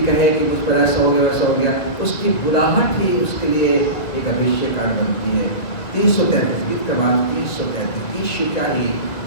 कहे कि मुझ पर ऐसा हो गया वैसा हो गया। उसकी बुलाहट ही उसके लिए एक अभिषेक कारण बनती है। 333 गीत क्रमांक 333। यीशु क्या ही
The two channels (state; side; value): late; right; 2.1 ms